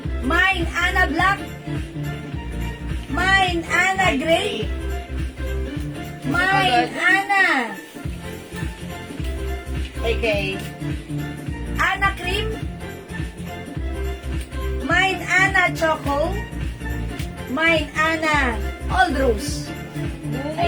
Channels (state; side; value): identical; both; correlation 1.00